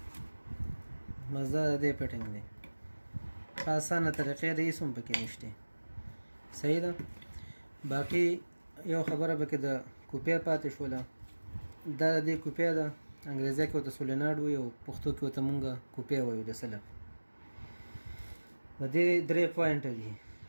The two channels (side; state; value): both; inverted; correlation -1.00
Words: مزه د دې فټینګ دی. په اسانه طریقې د هېڅ هم پکې نشته. صحیح ده. باقي یو خبره پکې د کوپې پاتې شوله. دا د دې کوپې ده، انګریزي کې ورته سولیناډ وایي او پښتو کې ورته مونږ کوپې وایو د سلب. د دې درې پوینټه دي،